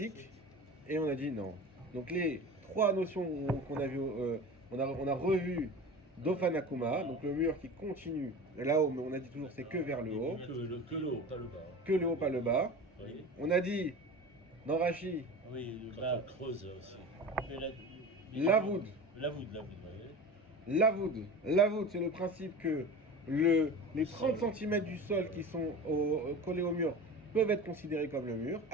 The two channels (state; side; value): normal; both; correlation 0.33